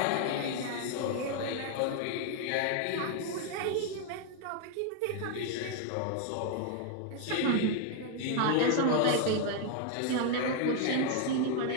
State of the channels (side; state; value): both; different; correlation 0.00